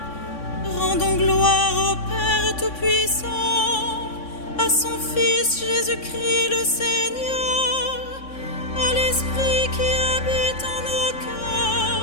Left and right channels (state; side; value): late; right; 3.6 ms